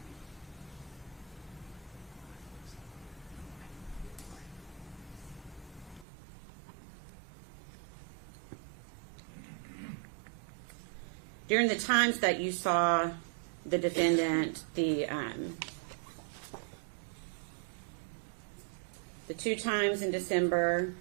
During the times that you saw the defendant, the 2 times in December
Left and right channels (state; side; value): drops out; left; at 6.1 s